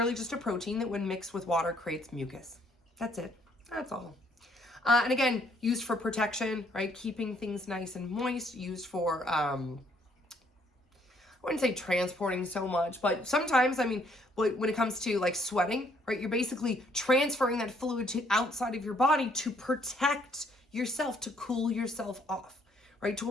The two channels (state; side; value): normal; both; correlation 0.66